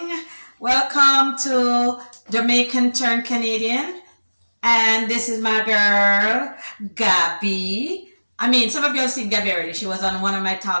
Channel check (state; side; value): inverted; both; correlation -1.00